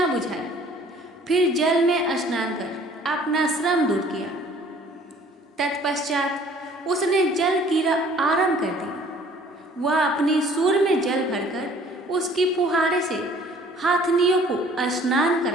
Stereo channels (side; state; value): both; normal; correlation 0.54